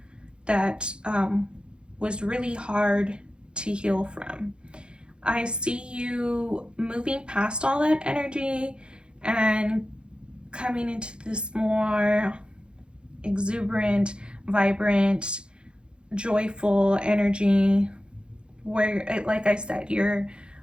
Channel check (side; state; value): left; late; 0.053 ms